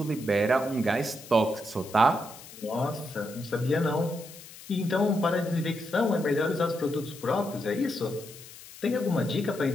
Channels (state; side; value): noise; left; hiss, 17 dB below the sound